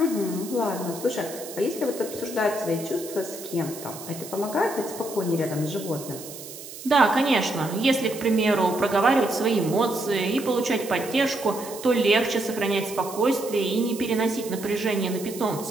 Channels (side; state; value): right; noise; hiss, 13 dB below the sound